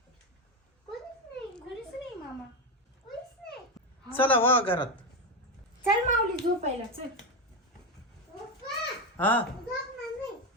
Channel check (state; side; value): normal; both; correlation 0.12